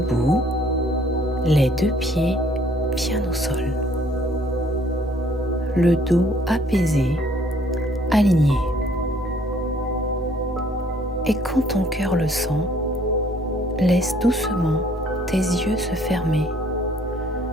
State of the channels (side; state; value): both; normal; correlation 0.61